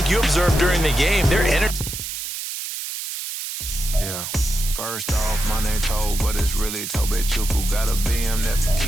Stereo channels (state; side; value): noise; right; hiss, 6 dB below the sound